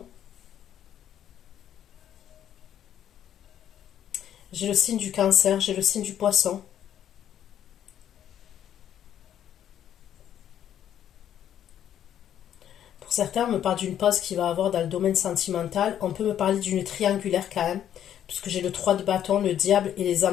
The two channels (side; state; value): right; quieter; 10.3 dB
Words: j'ai le signe du Cancer, j'ai le signe du Poisson. Pour certains, on me parle d'une pause qu'il va avoir dans le domaine sentimental. On peut me parler d'une triangulaire quand même, puisque j'ai le 3 de bâton, le diable et les